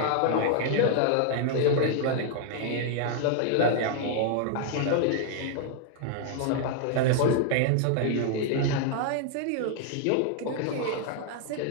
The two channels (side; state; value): both; different; correlation -0.01